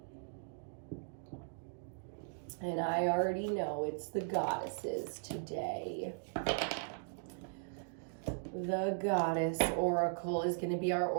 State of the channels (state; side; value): silent; left; digital silence